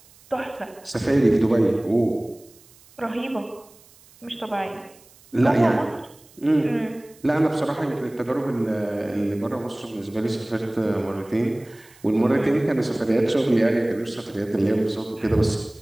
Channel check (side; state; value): right; noise; hiss, 27 dB below the sound